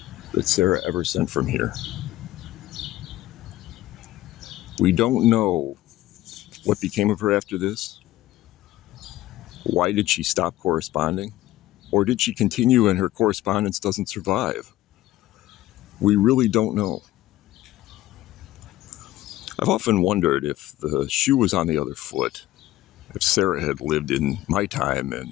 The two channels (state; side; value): quieter; right; 15.5 dB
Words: that Sarah ever sent from here. We don't know what became of her after this. Why did she stop corresponding? Or did she continue and her correspondence doesn't survive? We really don't know. I've often wondered if the shoe was on the other foot, if Sarah had lived in my time